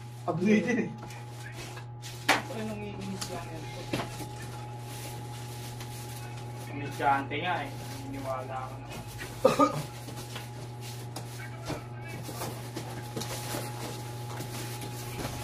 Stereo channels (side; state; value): both; identical; correlation 1.00